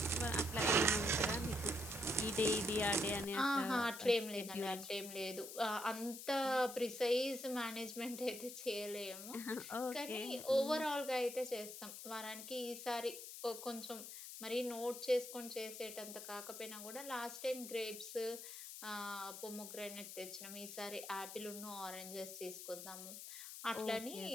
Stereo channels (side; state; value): left; noise; hiss, 10 dB below the sound